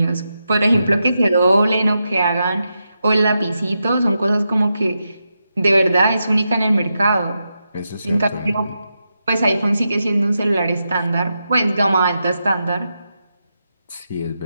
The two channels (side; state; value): both; inverted; correlation -0.87